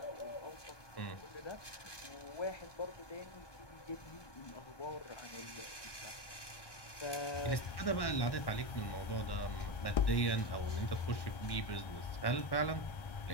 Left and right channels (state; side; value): late; right; 1.2 ms